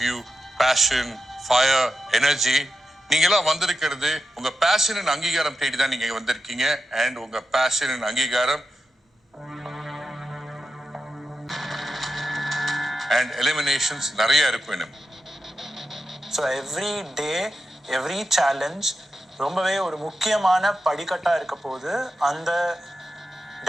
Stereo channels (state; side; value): normal; both; correlation 0.90